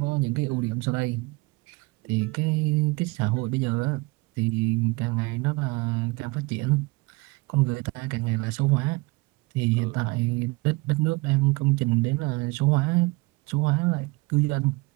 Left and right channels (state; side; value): quieter; left; 24.0 dB